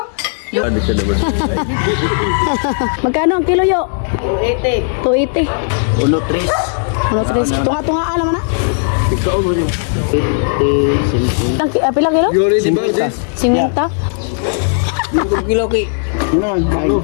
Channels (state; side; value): silent; right; digital silence